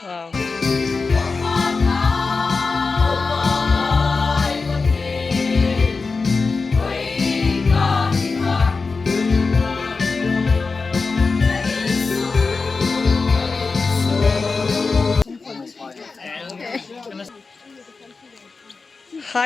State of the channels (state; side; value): quieter; right; 4.3 dB